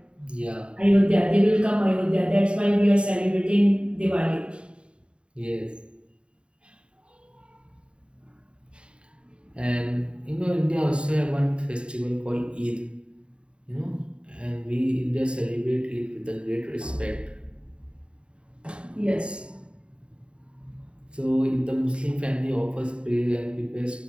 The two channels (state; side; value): late; left; 0.054 ms